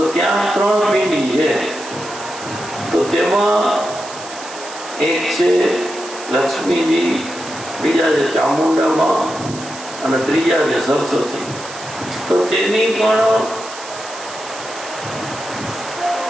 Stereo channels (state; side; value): noise; right; hiss, 14 dB below the sound